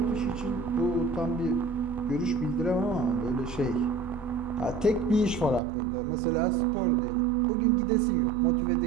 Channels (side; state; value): left; drops out; at 5.6 s